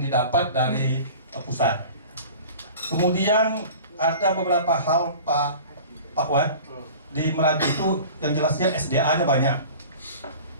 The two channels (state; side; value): inverted; both; correlation -0.41